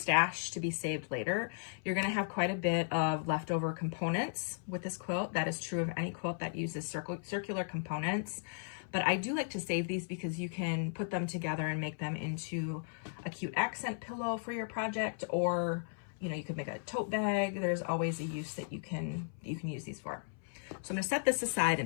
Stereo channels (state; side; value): silent; right; 54 dB below the other